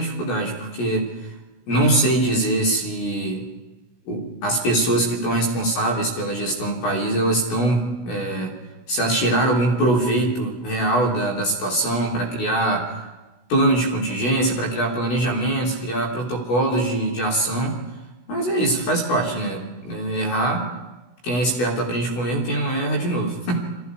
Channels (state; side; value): late; right; 16 ms